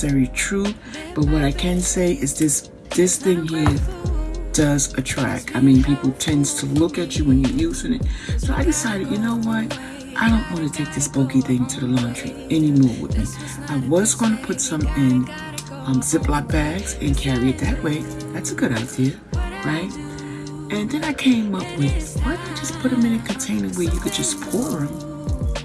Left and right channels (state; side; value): identical; both; correlation 1.00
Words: true, but what I can say is this thing here does attract. I mean, people tends to look at you when you're using it. So I decided, you know what? I don't want to take this bulky thing to the laundry anymore with me. I was going to put some in Ziploc bags and carry it that way. That's a good idea, right? And then I came up with, why not just put them in a container where you could just pour them